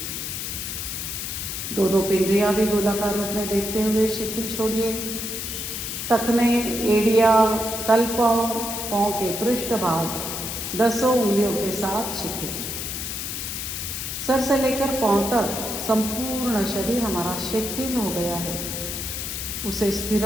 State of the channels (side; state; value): left; noise; hiss, 5 dB below the sound